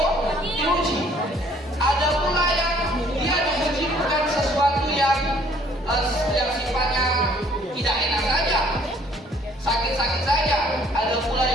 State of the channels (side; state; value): both; normal; correlation 0.60